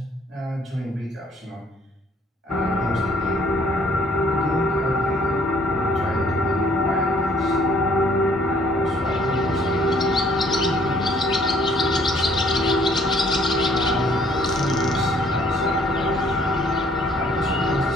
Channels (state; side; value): normal; both; correlation 0.62